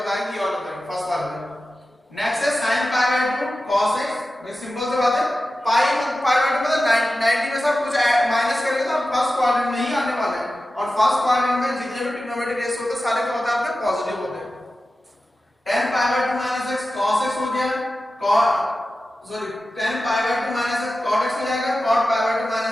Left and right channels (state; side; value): normal; both; correlation 0.94